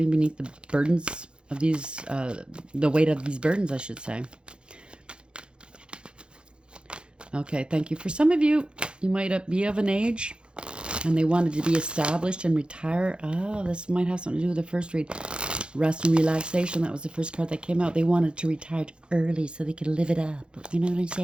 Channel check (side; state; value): left; late; 0.053 ms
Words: beneath the burdens of these, the weight of these burdens, I should say. Okay, thank you. For some of you, you might be of an age and they wanted to be established and retire. Oh, this might have something to do with the first read. Rest and relaxation. That was the first card that came out. They wanted to retire early so they could live it up. You know what I'm